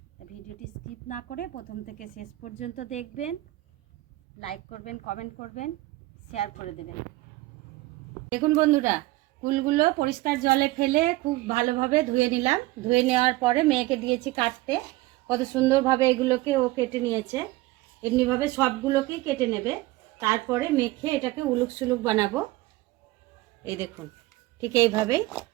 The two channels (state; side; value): quieter; left; 19.0 dB